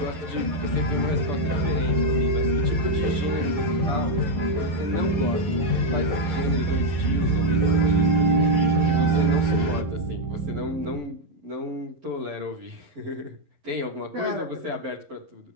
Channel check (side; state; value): left; late; 11 ms